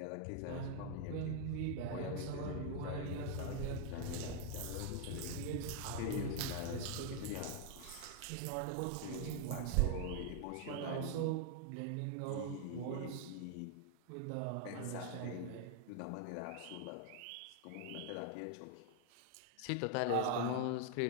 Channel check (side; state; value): both; different; correlation 0.00